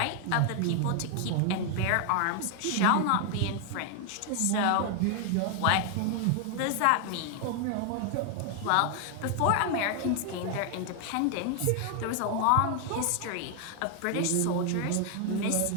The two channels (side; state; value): both; different; correlation 0.00